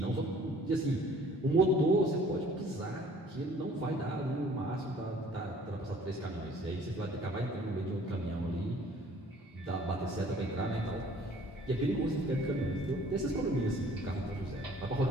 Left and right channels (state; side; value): normal; both; correlation 0.54